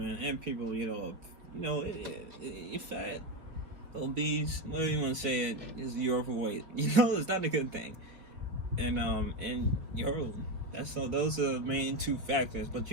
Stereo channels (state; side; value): late; left; 4.9 ms